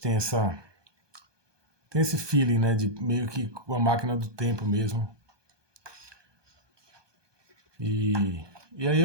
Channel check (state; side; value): late; left; 1.2 ms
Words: esse feeling, né, de meio que com a máquina do tempo mesmo. E aí